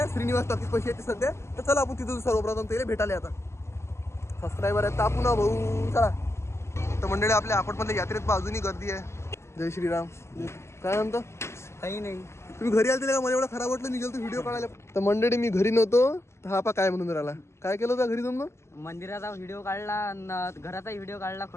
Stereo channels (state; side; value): late; right; 0.13 ms